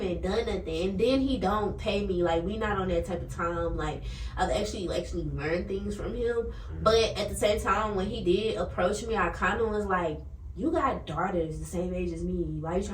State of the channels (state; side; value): identical; both; correlation 1.00